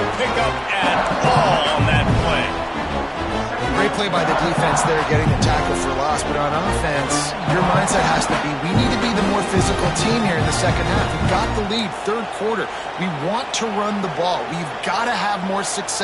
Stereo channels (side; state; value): both; identical; correlation 1.00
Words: pickup at all on that play. Great play by the defense there, getting the tackle for loss. But on offense, your mindset has to be, we need to be the more physical team here in the second half. We've got the lead, 3rd quarter. We want to run the ball. We've got to have more